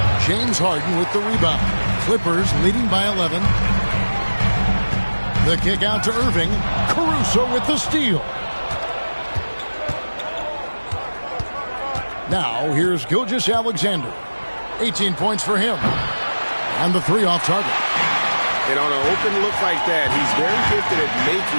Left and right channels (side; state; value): both; inverted; correlation -1.00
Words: James Harden with the rebound. Clippers leading by 11. The kick out to Irving. Caruso with the steal. Now, here's Gilgeous-Alexander. 18 points for him. And the three off target. And on an open look like that, he's very gifted at